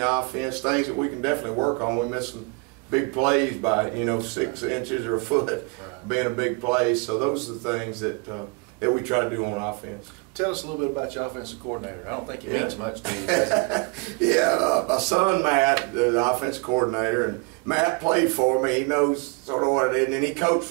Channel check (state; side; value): quieter; left; 29.6 dB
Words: offense, things that we can definitely work on. We missed some big plays by 6 inches or a foot, Right. being a big play. So those are the things that we try to do on offense. Tell us a little bit about your offensive coordinator. I don't think he Yeah. means much to you. Does he? Yeah, my son Matt, the offensive coordinator, and Matt played for me. He knows sort of what it is, and then he coached